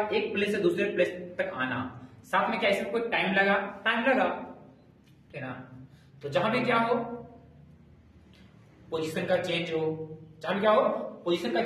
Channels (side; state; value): both; identical; correlation 1.00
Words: प्लेस से दूसरे प्लेस तक आना। साथ में क्या इसमें कोई टाइम लगा, ठीक है ना। तो जहां भी क्या हो, पोजीशन का चेंज हो, जहां भी क्या हो, पोजीशन का